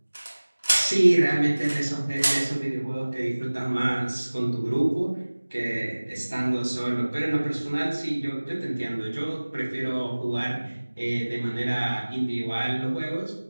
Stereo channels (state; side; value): inverted; both; correlation -1.00